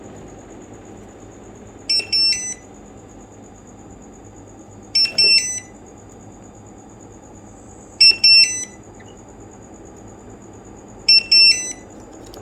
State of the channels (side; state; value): both; identical; correlation 1.00